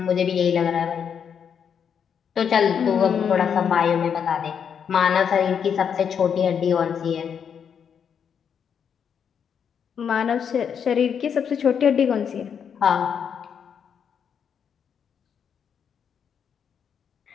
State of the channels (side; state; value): right; quieter; 7.5 dB